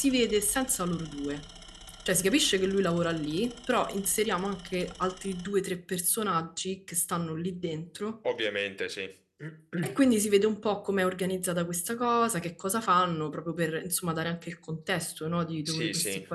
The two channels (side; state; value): both; identical; correlation 1.00